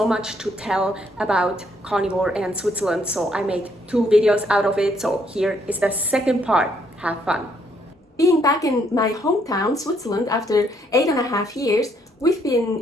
much to tell about carnivore and Switzerland, so I made 2 videos out of it. So here is the second part. Have fun. Being back in my hometown, Switzerland, after 8.5 years, we've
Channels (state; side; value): normal; both; correlation 0.70